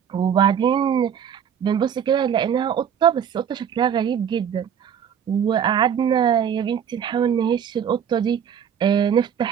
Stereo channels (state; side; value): quieter; left; 8.4 dB